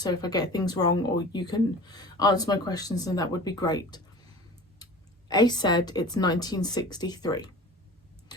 if I get things wrong or you can answer my questions, then that would be great. Ace said it's 1963,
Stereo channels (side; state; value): both; normal; correlation 0.39